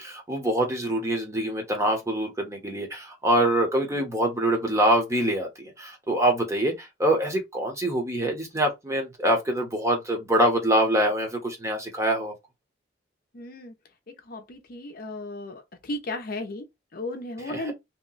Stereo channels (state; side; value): normal; both; correlation 0.31